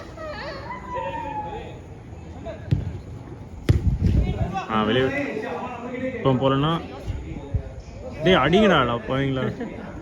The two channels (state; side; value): identical; both; correlation 1.00